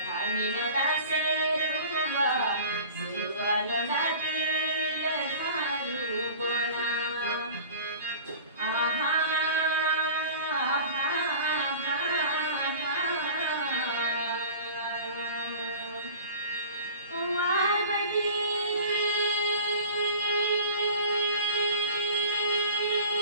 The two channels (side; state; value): both; inverted; correlation -0.40